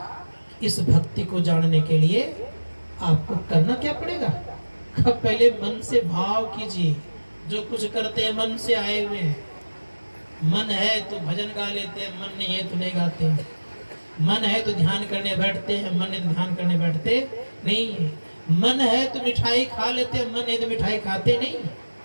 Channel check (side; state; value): both; inverted; correlation -1.00